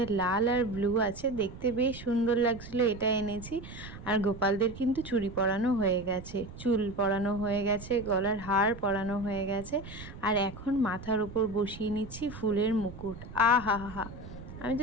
লাল আর ব্লু আছে, দেখতে বেশ সুন্দর লাগছিল, এটা এনেছি। আর গোপালদের কিন্তু চুড়ি পরানো হয়ে গেছে, চুল পরানো হয়ে গেছে, গলার হার পরানো হয়ে গেছে, আর এখন মাথার উপর বসিয়ে নিচ্ছি ফুলের মুকুট। আহা হা হা, আমি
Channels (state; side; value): noise; right; rumble, 14 dB below the sound